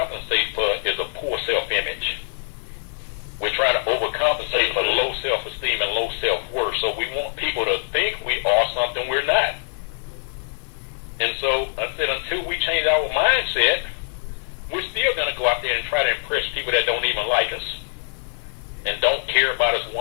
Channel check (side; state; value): right; silent; digital silence